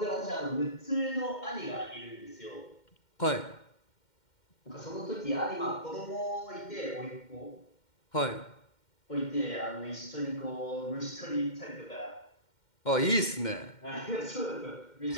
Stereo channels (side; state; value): right; late; 2.1 ms